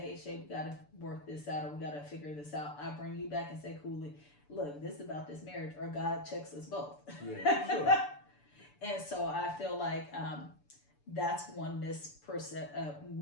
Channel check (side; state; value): right; late; 6.9 ms